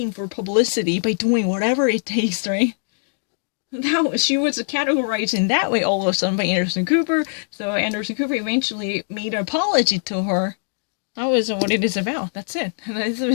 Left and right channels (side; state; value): right; silent; digital silence